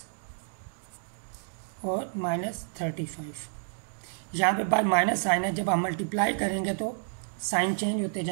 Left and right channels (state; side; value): silent; left; digital silence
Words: और माइनस 35। यहाँ पे बार माइनस साइन है, जब हम मल्टीप्लाई करेंगे तो साइन चेंज होते